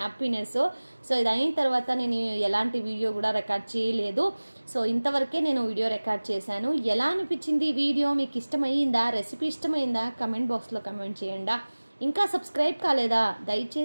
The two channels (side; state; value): both; inverted; correlation -1.00